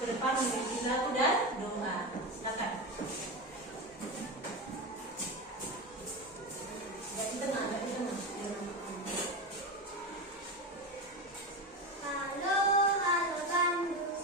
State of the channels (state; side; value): normal; both; correlation 0.19